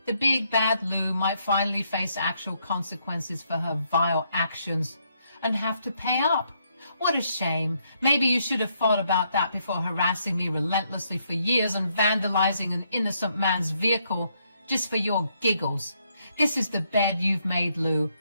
The big bad Lou might finally face actual consequences for her vile actions and have to pay up. What a shame. Maybe you should have thought about that before harassing me relentlessly for years and vandalizing an innocent man's vehicle just for your giggles. This is the bed you've made, Lou.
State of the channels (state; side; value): inverted; both; correlation -0.74